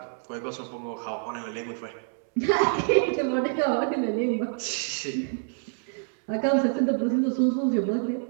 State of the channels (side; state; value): left; silent; 60 dB below the other